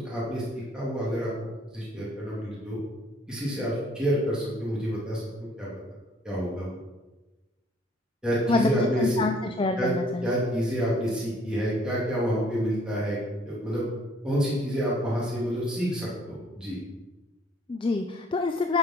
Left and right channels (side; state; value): both; normal; correlation 0.60